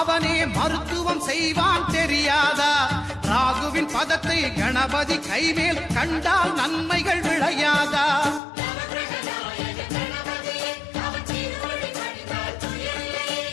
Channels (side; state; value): right; drops out; at 8.4 s